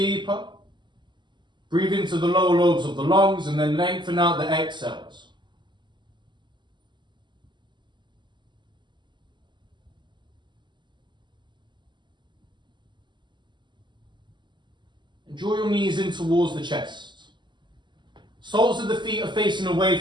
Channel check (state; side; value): late; left; 0.22 ms